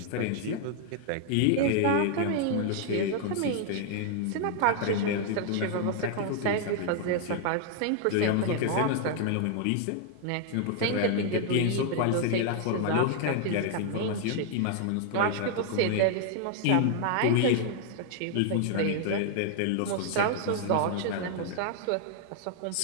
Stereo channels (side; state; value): both; different; correlation 0.00